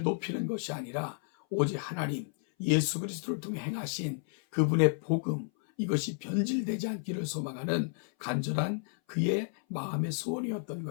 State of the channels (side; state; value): right; silent; 57 dB below the other